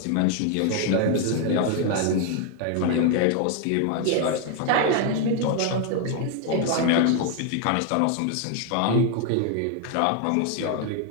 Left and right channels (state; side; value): different; both; correlation 0.00